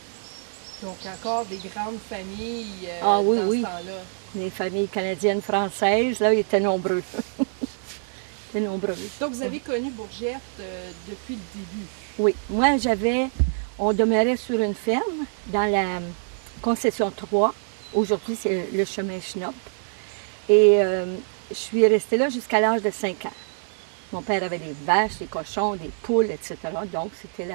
Donc, encore des grandes familles Ah oui, dans oui. ce temps-là. Les familles canadiennes, françaises, là, ils étaient nombreux. Ils étaient nombreux. Donc, vous avez connu Bourgette depuis le début. Oui, moi, on demeurait sur une ferme dans la concession 3. Aujourd'hui, c'est le chemin Schnopp. Et je suis restée là jusqu'à l'âge de 5 ans. Mon père avait des vaches, des cochons, des poules, etc. Donc, c'était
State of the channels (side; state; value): left; silent; digital silence